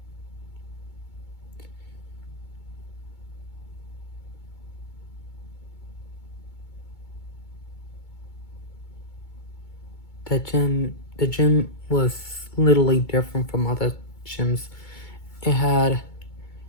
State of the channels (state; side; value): late; right; 2.2 ms